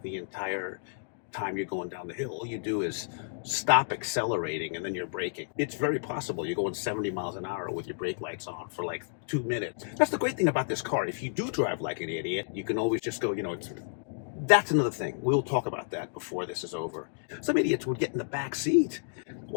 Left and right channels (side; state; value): right; silent; digital silence